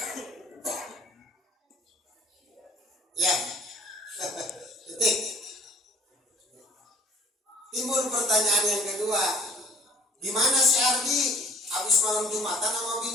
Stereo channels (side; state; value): both; normal; correlation 0.51